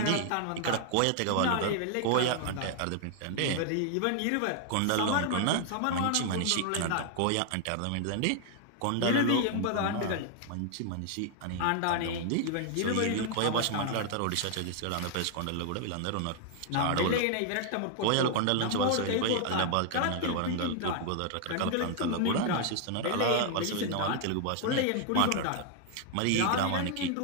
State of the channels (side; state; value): both; different; correlation 0.00